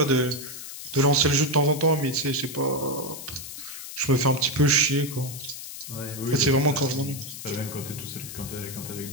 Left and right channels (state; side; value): noise; left; hiss, 10 dB below the sound